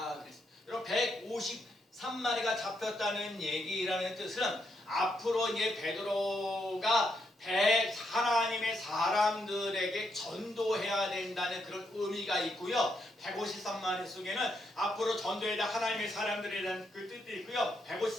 그랬어요. 여러분 153 3마리가 잡혔다는 얘기라는 뜻은 앞으로 이제 베드로가 하나님의 사람들에게 전도해야 된다는 그런 의미가 있고요. 153마리 속에는 앞으로 전도해야 하나님의 사람들에 대한 그 뜻도 있고요.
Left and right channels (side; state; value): both; normal; correlation 0.79